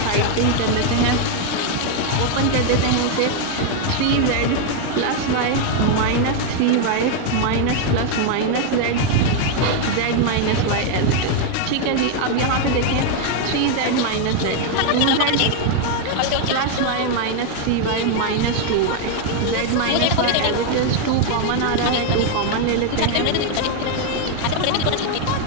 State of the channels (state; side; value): different; both; correlation 0.01